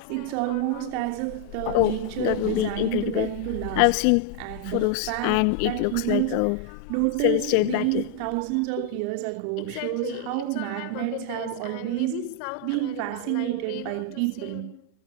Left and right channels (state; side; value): different; both; correlation 0.00